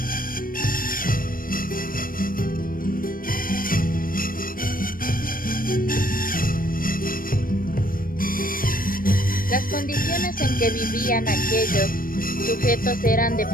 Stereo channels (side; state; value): right; late; 0.41 ms